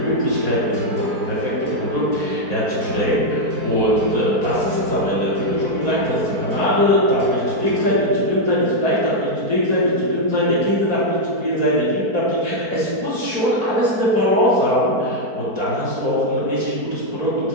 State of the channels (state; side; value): late; left; 4.5 ms